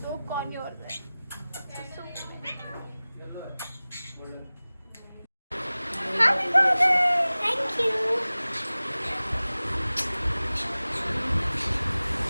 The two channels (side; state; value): both; inverted; correlation -0.98